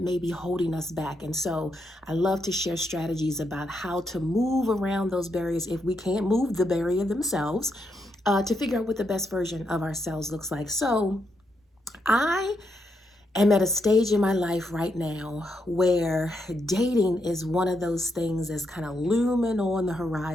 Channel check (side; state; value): both; normal; correlation 0.80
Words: may be holding us back. And so I love to share strategies about how to move around those barriers if we can't move the barrier themselves, to figure out what the best version of ourselves looks like. So I am at a stage in my life right now where dating is one of those things that's kind of looming on the